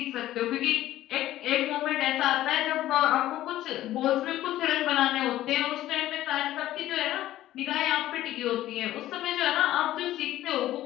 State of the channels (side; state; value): right; quieter; 14.2 dB